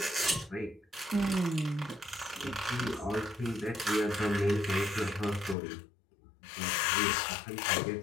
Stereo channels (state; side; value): drops out; right; at 5.6 s